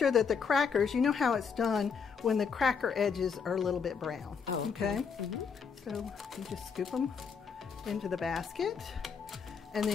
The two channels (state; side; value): quieter; right; 6.0 dB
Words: that the crackers, you know how it's done when the cracker edges are a little bit brown. Oh, okay? So you just scoop them into the basket, and